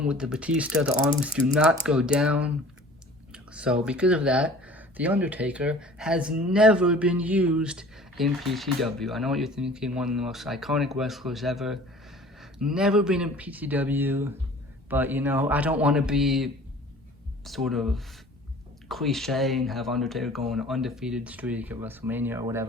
with the Batista. The arms do not go down. So because of that, the Undertaker has never been used in PTW. I know what you're thinking, one of the most iconic wrestlers ever. Never been in PTW, but you know, I don't want to be sort of cliche and have Undertaker go on an undefeated streak at WrestleMania or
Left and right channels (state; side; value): normal; both; correlation 0.47